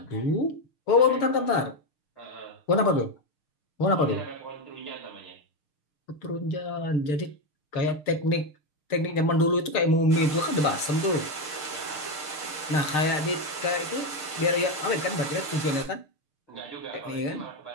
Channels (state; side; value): late; right; 6.6 ms